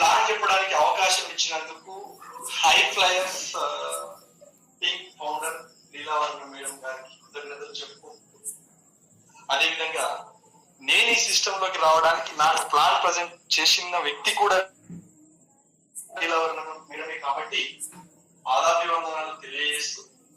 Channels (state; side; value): identical; both; correlation 1.00